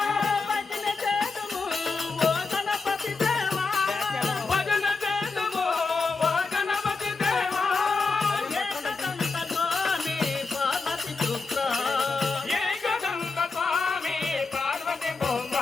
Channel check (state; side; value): quieter; right; 4.2 dB